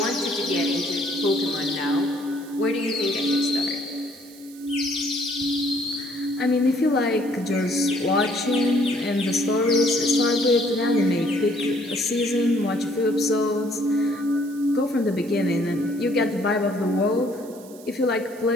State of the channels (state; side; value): noise; right; hiss, 22 dB below the sound